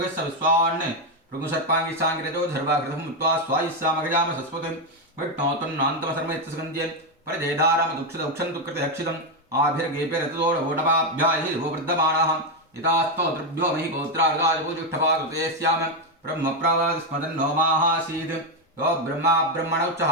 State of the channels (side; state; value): both; normal; correlation 0.05